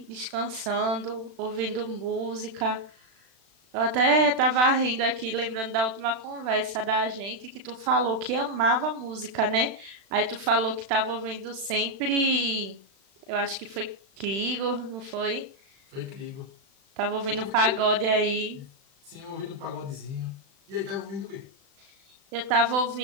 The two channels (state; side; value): late; left; 36 ms